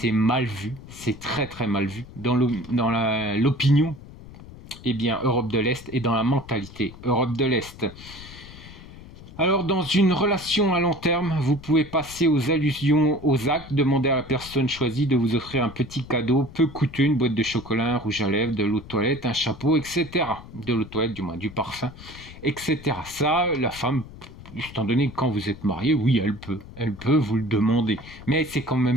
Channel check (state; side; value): noise; left; rumble, 17 dB below the sound